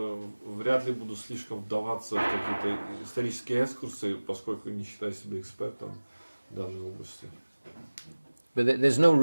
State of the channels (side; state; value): both; inverted; correlation -1.00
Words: ли буду слишком вдаваться в какие-то исторические экскурсы, поскольку не считаю себя экспертом в данной области. But there's no